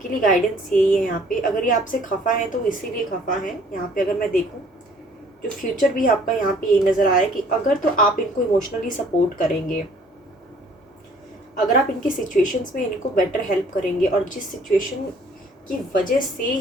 लिए गाइडेंस यही है यहाँ पे। अगर ये आपसे खफा है तो इसीलिए खफा है। यहाँ पे अगर मैं देखूँ जो फ्यूचर भी आपका यहाँ पे यही नज़र आ रहा है कि अगर तो आप इनको इमोशनली सपोर्ट करेंगे, अगर आप इनकी सिचुएशंस में इनको बेटर हेल्प करेंगे, और जिस सिचुएशन की वजह से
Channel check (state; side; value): normal; both; correlation 0.57